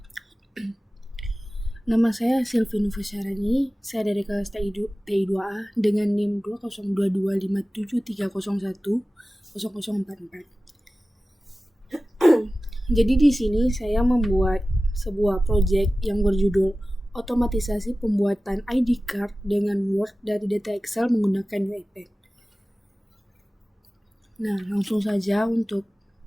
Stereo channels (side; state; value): both; normal; correlation 0.96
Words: Nama saya Silvi Nufasyarani, saya dari kelas TI2A dengan NIM 202257301044. Jadi di sini saya membuat sebuah proyek yang berjudul otomatisasi pembuatan ID card dengan Word dari data Excel menggunakan UiPath. Nah, langsung saja untuk